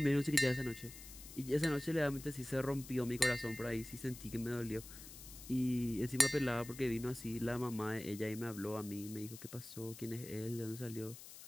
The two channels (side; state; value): left; noise; hiss, 14 dB below the sound